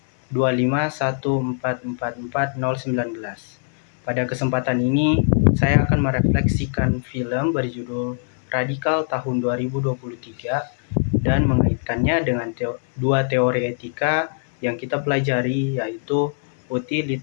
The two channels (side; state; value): right; silent; 59 dB below the other